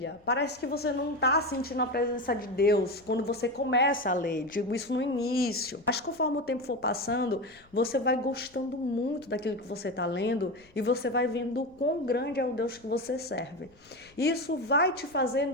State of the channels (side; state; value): left; noise; rumble, 29 dB below the sound